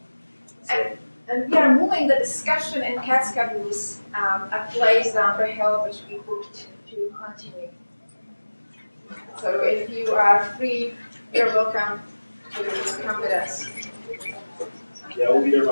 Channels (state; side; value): inverted; both; correlation -1.00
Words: that. And we are moving the discussion in cat schedules a place down the hill which we booked to continue. So if you are free, you're welcome to come with us. Yeah, we'll be there